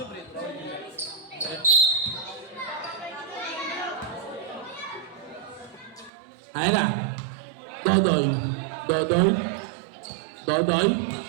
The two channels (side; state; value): left; drops out; at 6.1 s